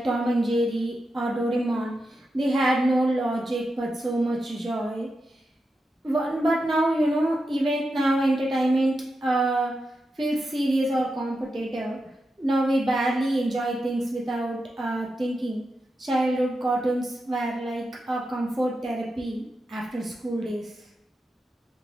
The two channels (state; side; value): normal; both; correlation 0.88